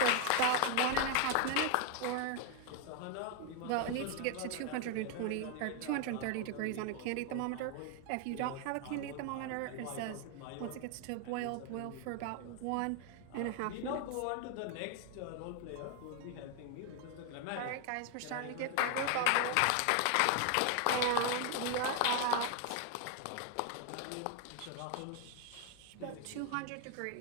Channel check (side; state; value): both; different; correlation 0.00